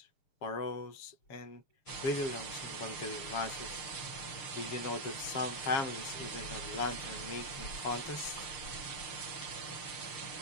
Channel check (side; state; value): right; late; 6.6 ms